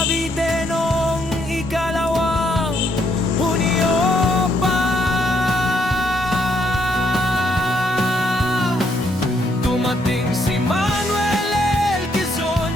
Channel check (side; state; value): both; normal; correlation 0.73